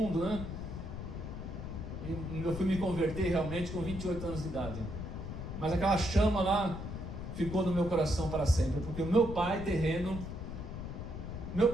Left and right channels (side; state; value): left; noise; rumble, 7 dB below the sound